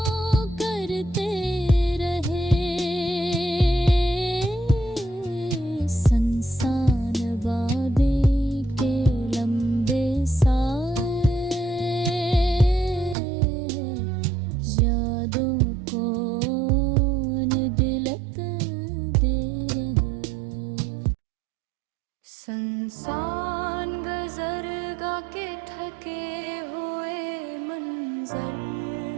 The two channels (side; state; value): left; drops out; at 13.2 s